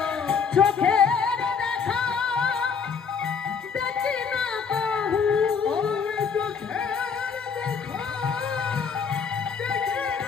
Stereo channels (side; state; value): right; quieter; 6.1 dB